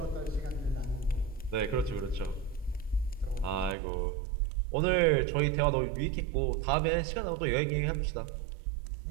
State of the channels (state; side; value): drops out; left; at 3.8 s